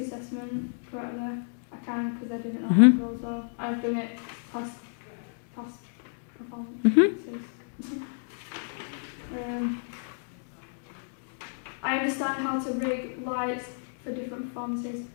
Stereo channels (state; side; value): silent; right; digital silence